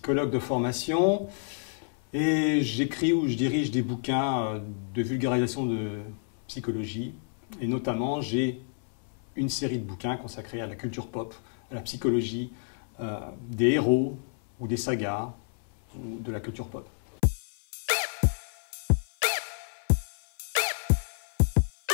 de formation et j'écris ou je dirige des bouquins de vulgarisation de psychologie. Et notamment, j'ai une série de bouquins consacrés à la culture pop, à la psychologie des héros ou des sagas ou de la culture pop.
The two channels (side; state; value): right; silent; 58 dB below the other